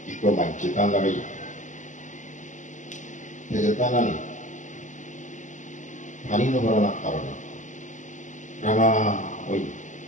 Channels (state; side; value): late; right; 0.36 ms